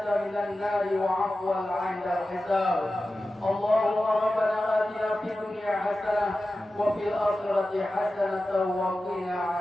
من النار وعفوا عند الحساب. اللهم ربنا آتنا في الدنيا حسنة وفي الآخرة حسنة وقنا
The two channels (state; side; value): normal; both; correlation 0.94